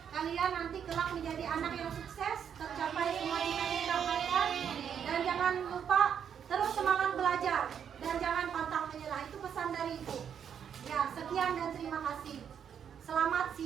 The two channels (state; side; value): quieter; left; 8.1 dB